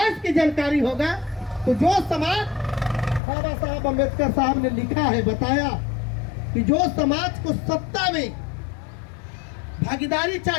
की जानकारी होगा तो जो समाज बाबा साहब अम्बेडकर साहब ने लिखा है, बताया कि जो समाज को सत्ता में भागीदारी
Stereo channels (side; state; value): right; drops out; at 3.2 s